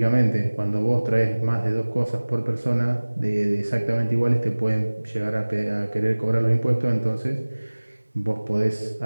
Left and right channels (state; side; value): inverted; both; correlation -1.00